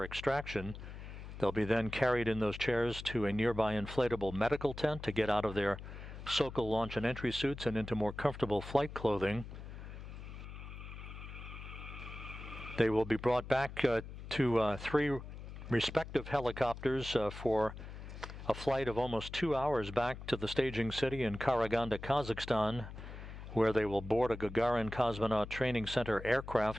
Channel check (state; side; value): noise; left; hum, 11 dB below the sound